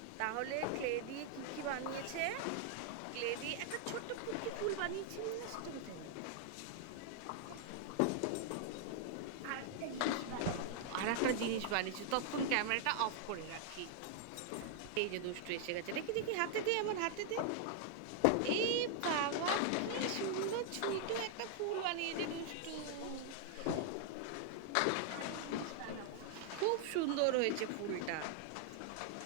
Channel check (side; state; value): both; different; correlation 0.00